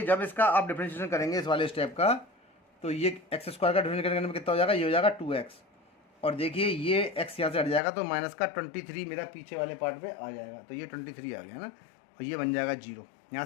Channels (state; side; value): drops out; right; at 7.8 s